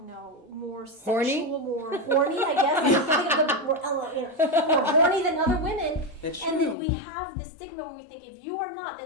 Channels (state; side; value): drops out; right; at 6.8 s